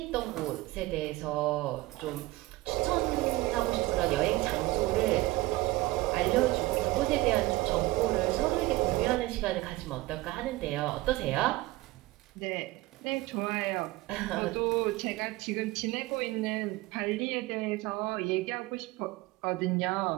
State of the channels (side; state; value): left; quieter; 19.7 dB